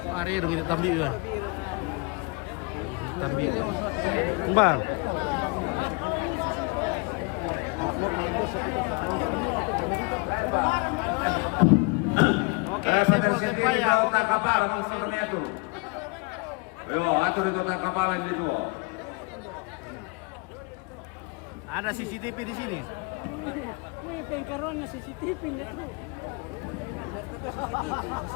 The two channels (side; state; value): right; quieter; 30.4 dB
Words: Are dong itu tabiu ya. Tabiu. Bang. Oke, saya mau ya. Tak kapal, kami itu. Yo, atur itu tak kapalan itu. Ada CCTV di sini. May pengkaroon na CCTV nito.